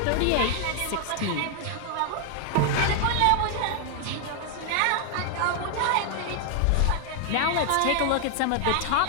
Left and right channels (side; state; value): both; different; correlation 0.00